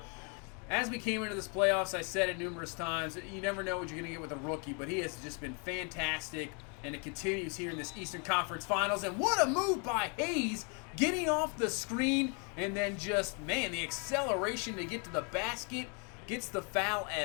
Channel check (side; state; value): right; quieter; 35.7 dB